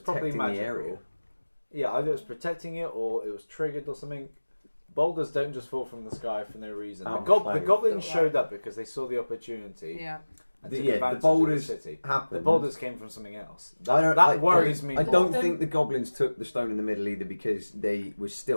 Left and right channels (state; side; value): inverted; both; correlation -1.00